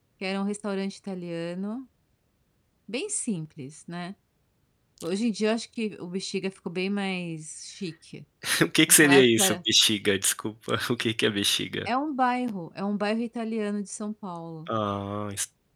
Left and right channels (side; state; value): both; identical; correlation 1.00